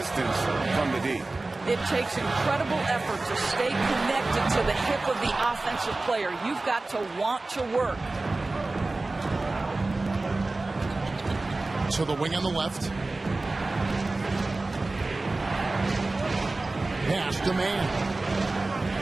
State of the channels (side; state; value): left; quieter; 3.2 dB